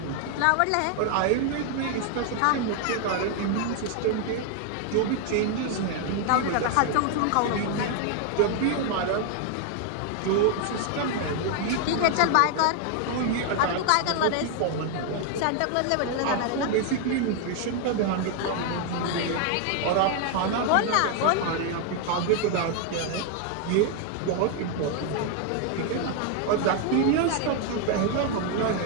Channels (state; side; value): different; both; correlation 0.00